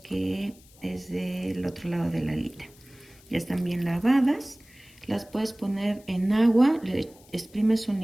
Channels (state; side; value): noise; left; hiss, 26 dB below the sound